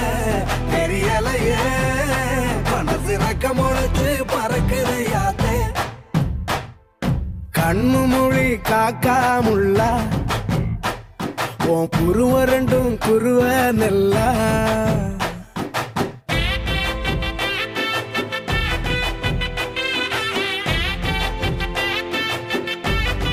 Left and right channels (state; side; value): identical; both; correlation 1.00